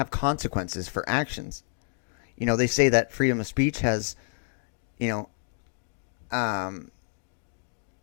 consequences for actions. They say that freedom of speech has,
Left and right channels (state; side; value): silent; right; digital silence